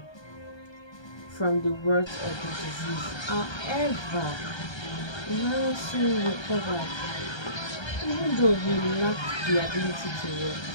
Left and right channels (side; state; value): right; late; 1.3 ms